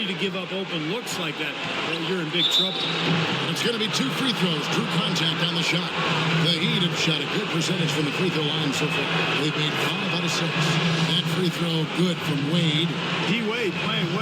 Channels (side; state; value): both; identical; correlation 1.00